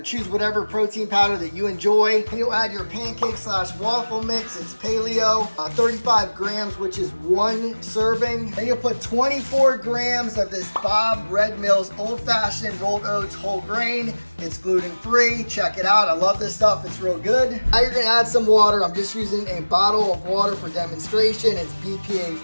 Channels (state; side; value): inverted; both; correlation -1.00